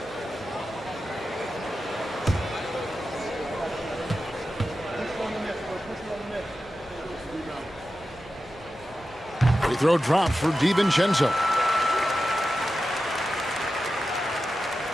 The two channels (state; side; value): normal; both; correlation 0.92